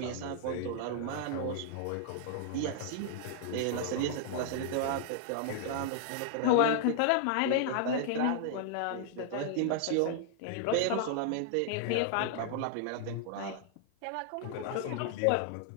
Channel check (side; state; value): both; different; correlation 0.00